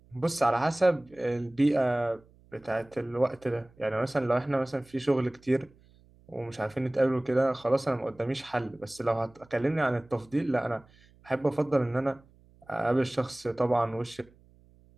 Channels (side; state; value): right; noise; hum, 28 dB below the sound